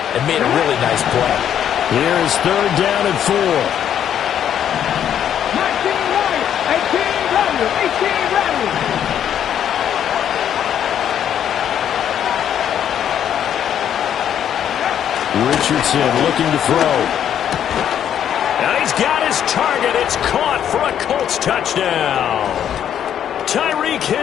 and made a really nice play. Here is 3rd down and 4. 18 rally. Richardson looking to throw. Now he's got his target. It's caught for a Colts touchdown. Tyreek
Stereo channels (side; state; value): right; quieter; 9.6 dB